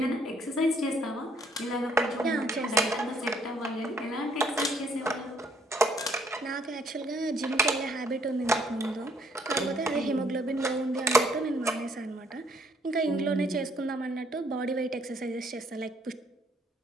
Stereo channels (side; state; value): both; normal; correlation 0.65